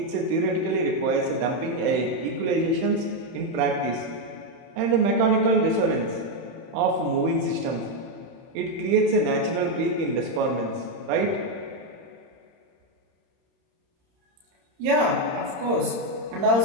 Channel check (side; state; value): left; late; 30 ms